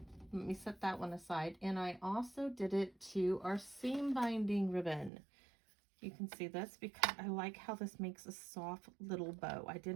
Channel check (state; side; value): drops out; left; at 5.1 s